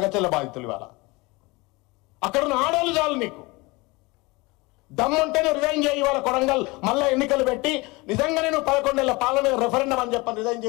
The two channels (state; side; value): quieter; right; 24.3 dB